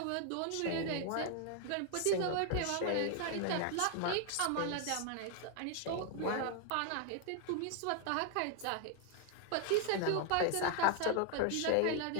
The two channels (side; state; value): both; different; correlation 0.00